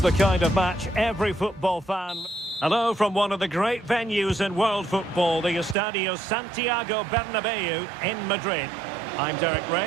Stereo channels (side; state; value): left; drops out; at 5.8 s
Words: the kind of match every football fan... Hello from one of the great venues in world football, the Estadio Santiago Bernabeu in Madrid. I'm Derek